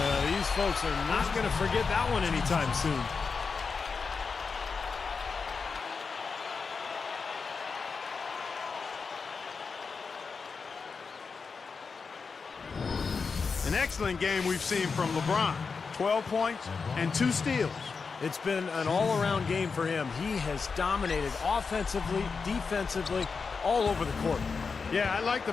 These folks are not going to forget that one anytime soon. An excellent game we've seen from LeBron. 12 points and 2 steals. It's been an all-around game for him. He has dominated offensively, defensively, all over the court. Yeah, I like the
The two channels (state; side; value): quieter; right; 5.0 dB